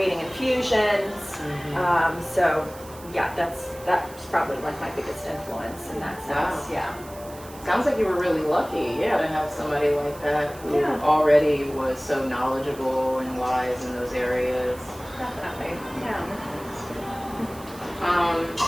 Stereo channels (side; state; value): right; noise; hiss, 19 dB below the sound